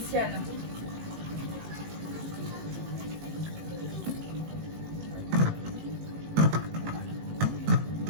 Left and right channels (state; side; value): late; left; 18 ms